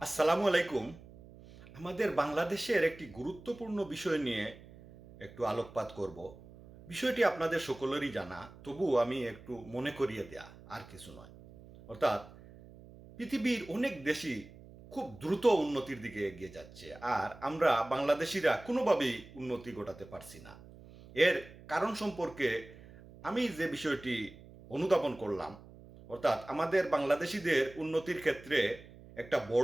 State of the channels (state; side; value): noise; right; hum, 19 dB below the sound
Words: আলাইকুম। আমাদের বাংলাদেশের একটি গুরুত্বপূর্ণ বিষয় নিয়ে একটু আলোকপাত করব। বিষয়টি আপনাদের সকলেরই জানা, তবুও আমি একটু মনে করিয়ে দেয়া, আর কিছু নয়। অর্থাৎ পৃথিবীর অনেক দেশই খুব দ্রুত উন্নতির দিকে এগিয়ে যাচ্ছে, আর আমরা বাংলাদেশিরা কোনোভাবেই উন্নতি ঘটাতে পারছি না। এর কারণ সম্পর্কে আমি যে বিষয়টি অনুধাবন করলাম, অর্থাৎ আমাদের বাংলাদেশিদের উন্নতির ক্ষেত্রে একটা